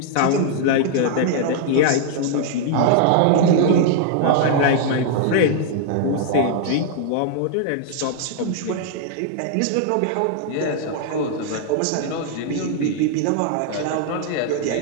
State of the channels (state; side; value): different; both; correlation 0.00